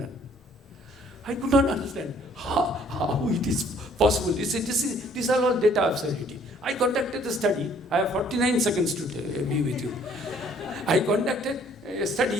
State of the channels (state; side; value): normal; both; correlation 0.60